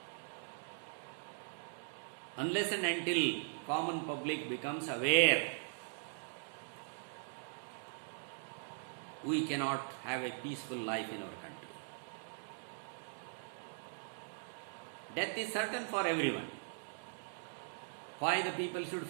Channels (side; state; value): left; silent; digital silence